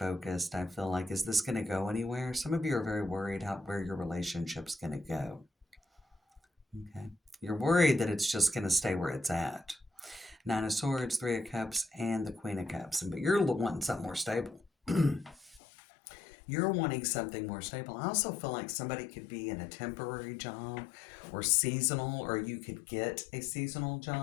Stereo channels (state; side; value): drops out; right; at 15.6 s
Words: I feel like, is this going to go anywhere? Some of you are very worried where your relationship's going to go, okay? You're worried that it's just going to stay where it's at. Nine of Swords, Three of Cups, and the Queen of Cups. But you're wanting something more stable. You're wanting something more stable. I also feel like somebody could be in a temporary job or seasonal, or you could get a seasonal